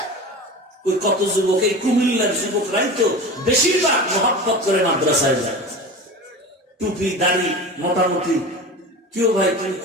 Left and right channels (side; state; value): both; normal; correlation 0.31